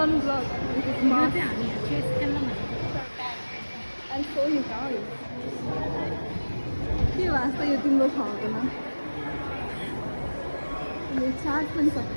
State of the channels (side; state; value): both; inverted; correlation -1.00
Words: I'm so sorry. के वास्ता यो तिम्रो छ हुँदैन. यो चार्ज पनि